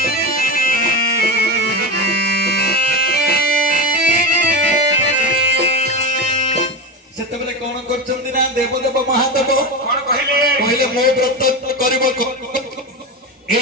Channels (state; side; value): normal; both; correlation 0.20